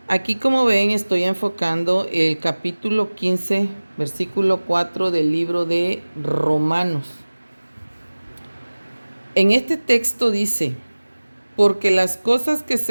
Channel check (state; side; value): inverted; both; correlation -1.00